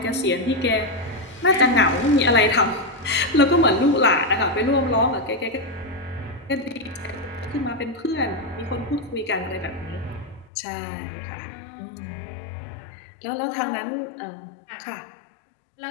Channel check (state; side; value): drops out; right; at 10.5 s